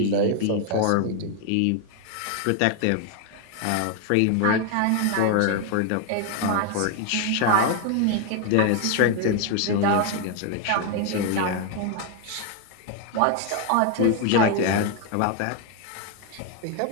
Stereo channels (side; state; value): both; different; correlation 0.01